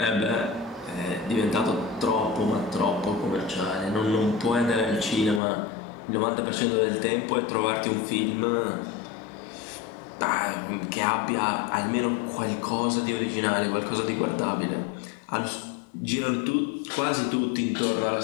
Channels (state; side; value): drops out; right; at 5.4 s